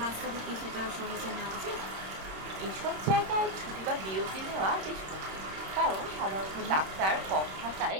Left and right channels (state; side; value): late; left; 26 ms